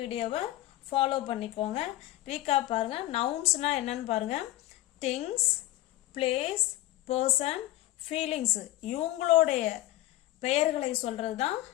ஃபாலோ பண்ணிக்கோங்க. ரீகாப் பாருங்கள். நவுன்ஸ்னால் என்னன்னு பாருங்கள். திங்ஸ், பிளேஸ், பர்சன், ஃபீலிங்ஸு இவங்களுடைய பெயர்களை சொல்கிறது தான்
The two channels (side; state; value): right; quieter; 15.7 dB